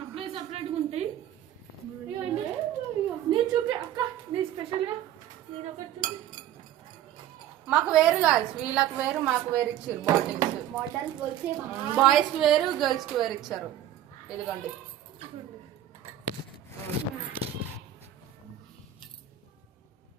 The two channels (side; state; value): left; quieter; 11.6 dB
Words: సపరేట్గా ఉంటాయి. ఇవ్వండి నేను చూపి అక్క, నీ స్పెషల్గా నేను ఒకటి చూపి. మాకు వేరు కాదు, వీళ్ళకి వేరు మాకు వేరు ఇచ్చారు బాటిల్స్. బాయ్స్ కి వేరు, గర్ల్స్ కి వేరు ఇచ్చారు. ఇదిగోండి.